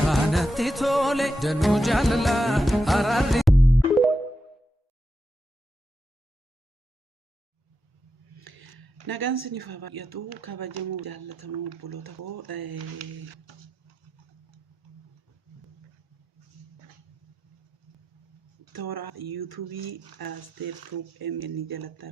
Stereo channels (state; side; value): normal; both; correlation 0.87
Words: natti tole danuu jaalala araarri nagaan siniif haa baay'atu kabajamoo jaallatamoo obboloota koo toora yuutuubii Asteer Tuub MN jalatti